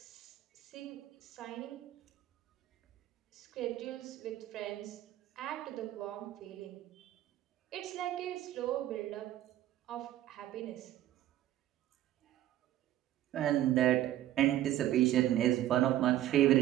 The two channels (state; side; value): quieter; left; 13.3 dB